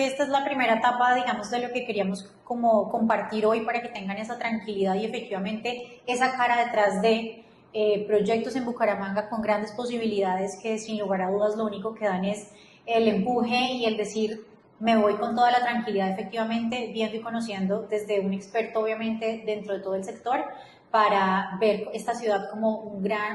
esta es la primera etapa, digamos, de lo que queríamos como compartir hoy para que tengan esa tranquilidad y efectivamente esa cara detrás de proyectos en Bucaramanga con grandes posibilidades que sin lugar a dudas lo único que dan es el empuje y el decir me voy con toda la tranquilidad efectivamente viendo y conociendo desde un experto obviamente dentro de todo el sector para ver esta ciudad como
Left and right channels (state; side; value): identical; both; correlation 1.00